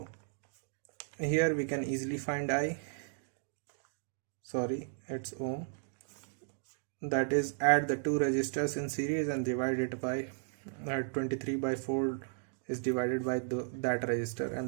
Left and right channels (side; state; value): left; silent; digital silence